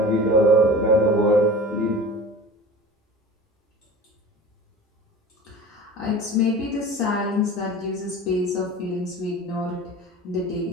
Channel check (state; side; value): normal; both; correlation 0.37